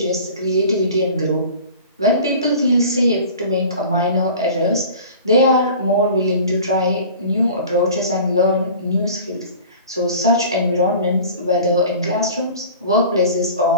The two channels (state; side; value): inverted; both; correlation -0.41